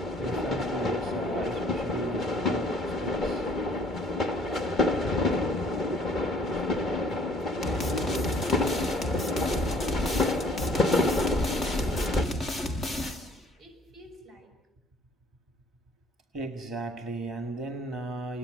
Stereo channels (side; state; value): both; normal; correlation 0.57